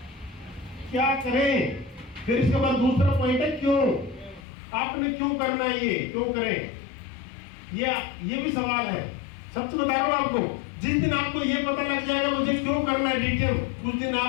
क्या करें। फिर इसके बाद दूसरा पॉइंट है क्यों, आपने क्यों करना है, ये क्यों करें, ये भी सवाल है। सच बता रहा हूं आपको, जिस दिन आपको ये पता लग जाएगा मुझे क्यों करना है डीटीएम, उस दिन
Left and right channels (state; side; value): drops out; right; at 4.5 s